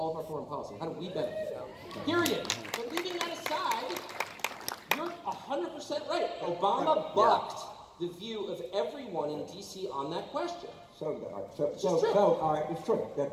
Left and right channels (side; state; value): both; identical; correlation 1.00